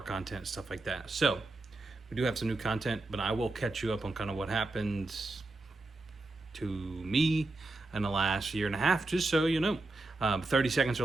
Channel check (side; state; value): left; quieter; 3.0 dB